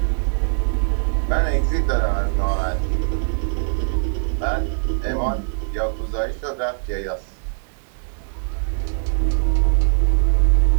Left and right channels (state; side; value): silent; left; digital silence